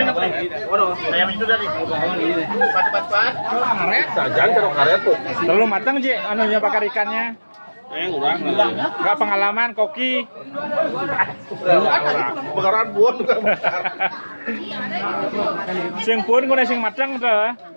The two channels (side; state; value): both; inverted; correlation -1.00